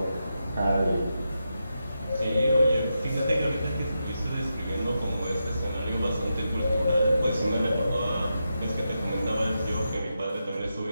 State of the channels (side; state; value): both; inverted; correlation -0.87